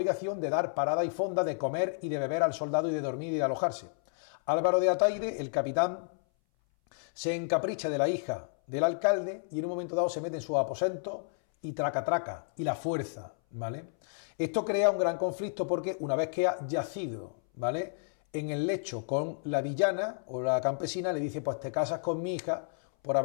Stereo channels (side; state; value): right; silent; 57 dB below the other